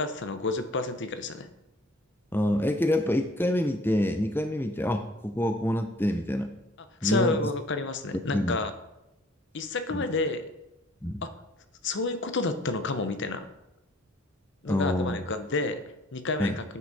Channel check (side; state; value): both; normal; correlation 0.55